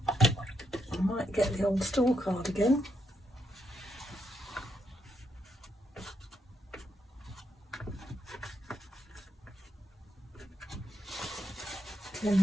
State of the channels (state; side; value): normal; both; correlation 0.80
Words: I might get the old store card again.